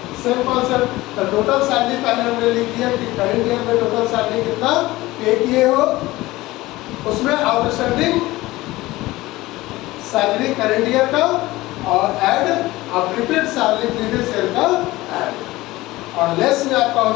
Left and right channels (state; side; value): quieter; right; 18.7 dB